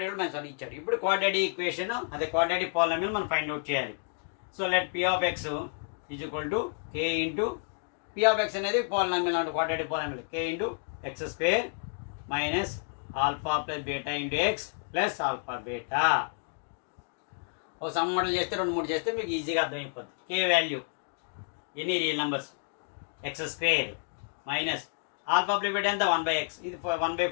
కూడా -1 ఇచ్చాడు. ఇప్పుడు క్వాడ్రాటిక్ ఈక్వేషన్ అదే క్వాడ్రాటిక్ పాలినామియల్ మనం ఫైండ్ అవుట్ చేయాలి. So let p of x is equal to k into p of x అనేది పాలినామియల్ అంటే quadratic polynomial k into x square minus alpha plus beta into x plus alpha beta. ఒక some model చేస్తే 2-3 చేస్తే మీకు ఈజీగా అర్థమైపోతుంది. k value ఎన్ని real numbers X square minus alpha plus beta ఎంత 1/x, ఇది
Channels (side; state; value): right; silent; 58 dB below the other